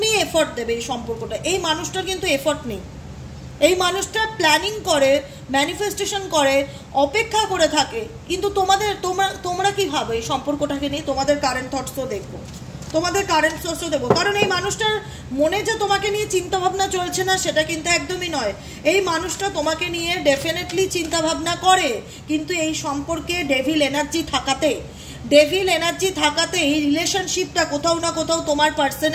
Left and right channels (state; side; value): identical; both; correlation 1.00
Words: এফর্ট দেবে এই সম্পর্কটা। এই মানুষটার কিন্তু এফর্ট নেই, এই মানুষটা প্ল্যানিং করে, ম্যানিফেস্টেশন করে, অপেক্ষা করে থাকে, কিন্তু তোমরা কি ভাবে এই সম্পর্কটাকে নিয়ে? তোমাদের কারেন্ট থটসও দেখবো, তোমাদের কারেন্ট সোর্সও দেবো, কারণ এই মানুষটার মনে যে তোমাকে নিয়ে চিন্তাভাবনা চলছে না সেটা কিন্তু একদমই নয়। এই মানুষটা তোমাকে নিয়ে ডেফিনেটলি চিন্তাভাবনা করে, কিন্তু এই সম্পর্কে ডেভিল এনার্জি থাকাতে এই রিলেশনশিপটা কোথাও না কোথাও তোমার